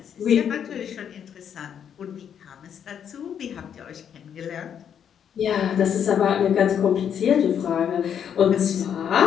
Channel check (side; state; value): right; quieter; 8.5 dB